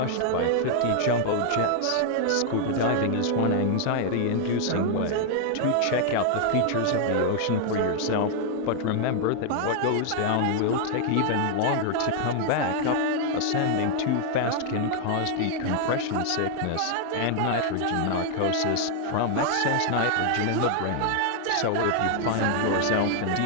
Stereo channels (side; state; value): both; different; correlation 0.00